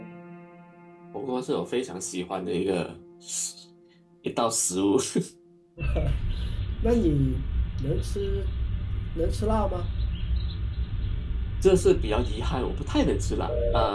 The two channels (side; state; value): both; identical; correlation 1.00